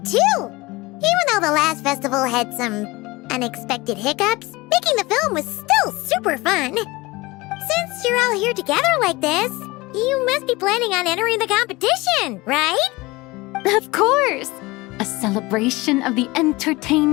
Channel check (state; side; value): quieter; right; 22.0 dB